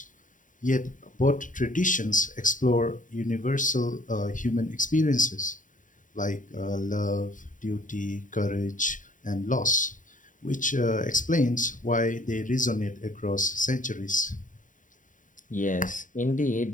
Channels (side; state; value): right; late; 0.38 ms